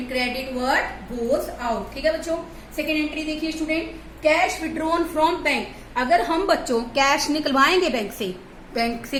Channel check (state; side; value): identical; both; correlation 1.00